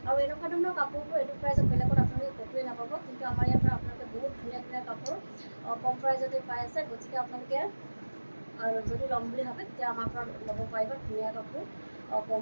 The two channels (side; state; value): both; inverted; correlation -1.00